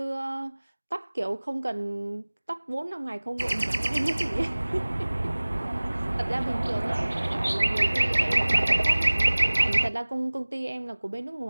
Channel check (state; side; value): inverted; both; correlation -1.00